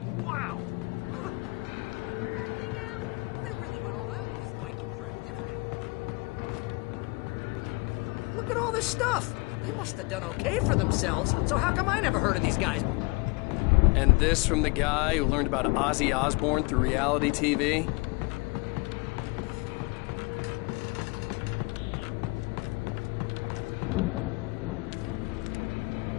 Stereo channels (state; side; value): quieter; right; 27.8 dB